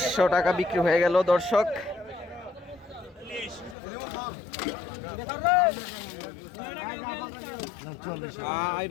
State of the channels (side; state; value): right; drops out; at 3.8 s